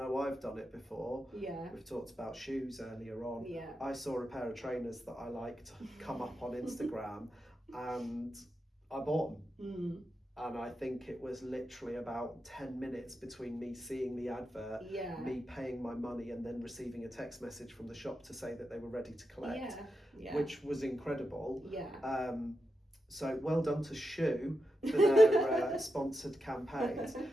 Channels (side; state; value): both; normal; correlation 0.87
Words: I've done it before. We've talked about shoes earlier on. I saw a pair of trainers that I liked come up on Instagram and I bought them. And I think it was literally about 10 minutes between me seeing the advert, me paying my money, and then receiving a text message from the shop to say that they were ready to collect, which was incredible. So well done to Shoe for their sponsored campaigns.